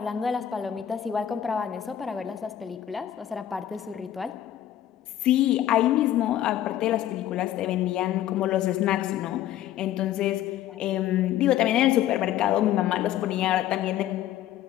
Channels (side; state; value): right; quieter; 11.8 dB